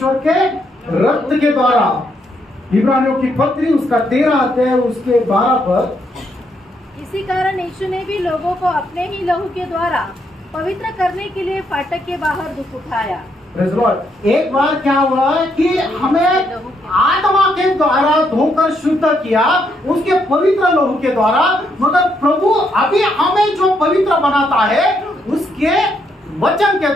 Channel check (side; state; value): both; normal; correlation 0.76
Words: के रक्त के द्वारा। इब्रानियों की पत्री उसका 13 अध्याय उसके 12 पर। इसी कारण यीशु ने भी लोगों को अपने ही लहू के द्वारा पवित्र करने के लिए फाटक के बाहर दुख उठाया। Praise the Lord। एक बार क्या हुआ कि हमें आत्मा के द्वारा धोकर शुद्ध किया, उसके पवित्र लहू के द्वारा, मगर प्रभु अभी हमें जो पवित्र बनाता है उसके वचन के